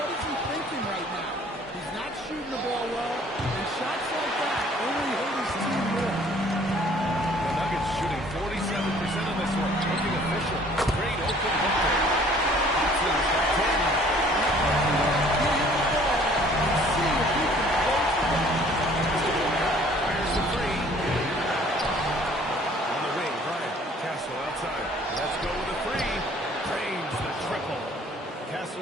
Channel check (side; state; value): both; normal; correlation 0.55